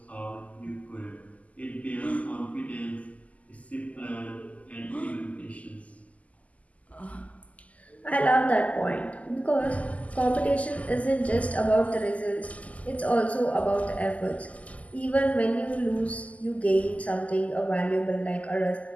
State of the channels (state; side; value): late; right; 0.071 ms